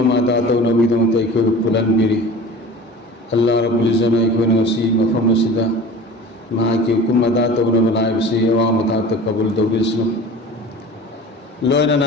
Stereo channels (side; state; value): both; normal; correlation 0.39